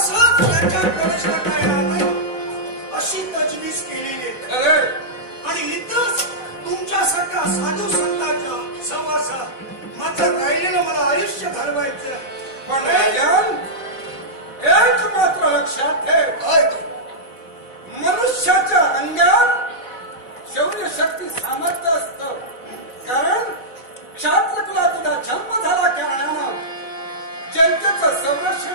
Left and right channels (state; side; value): late; right; 4.0 ms